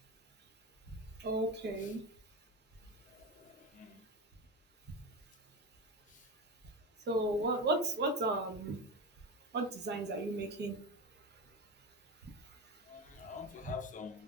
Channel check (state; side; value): normal; both; correlation 0.22